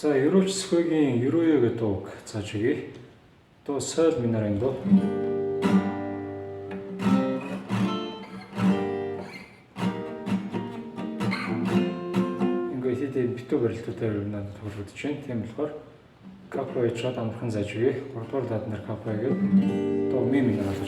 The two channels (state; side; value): identical; both; correlation 1.00